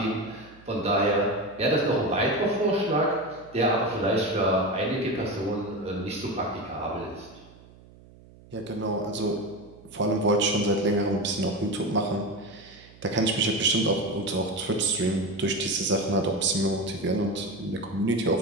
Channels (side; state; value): right; noise; hum, 23 dB below the sound